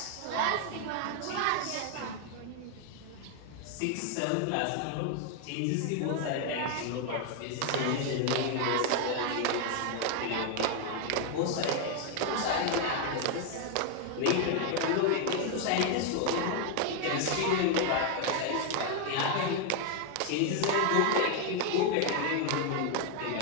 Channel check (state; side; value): different; both; correlation 0.00